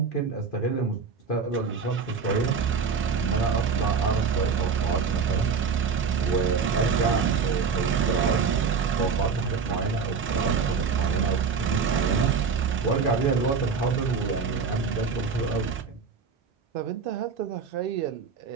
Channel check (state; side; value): quieter; left; 5.5 dB